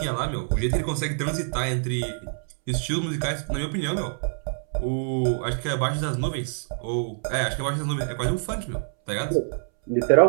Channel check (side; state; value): left; silent; 61 dB below the other